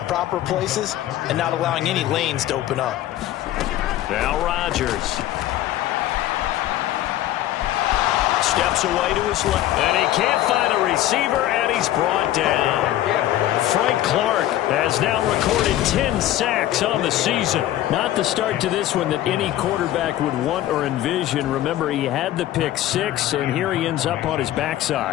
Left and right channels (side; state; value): right; quieter; 13.6 dB